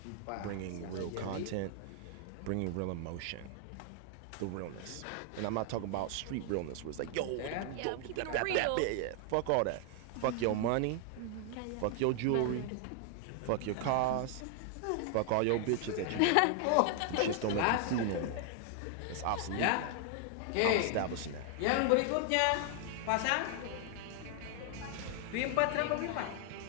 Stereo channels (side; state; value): both; different; correlation 0.00